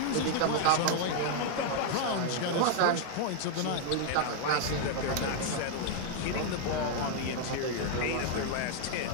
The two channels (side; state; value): both; different; correlation 0.00